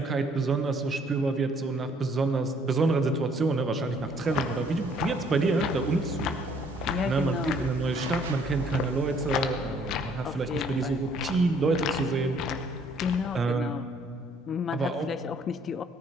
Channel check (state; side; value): normal; both; correlation 0.62